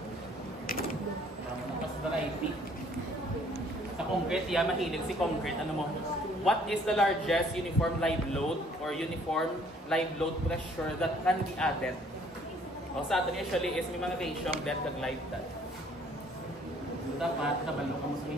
Variety. Sa concrete, mahilig si concrete. Ano mo? What is the largest uniform live load or uniform live load pressure that can be added? Sa atin usually is may mga ratio ang dead kag live dad. So dapat nabalo ka mo sa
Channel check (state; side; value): normal; both; correlation 0.60